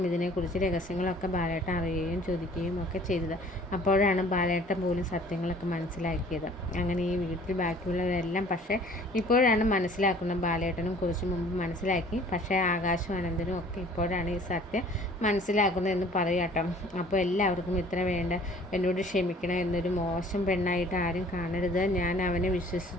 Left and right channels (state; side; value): normal; both; correlation 0.52